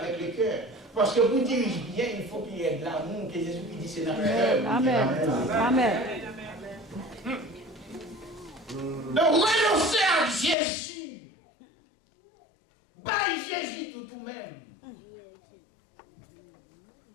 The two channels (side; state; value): right; drops out; at 10.6 s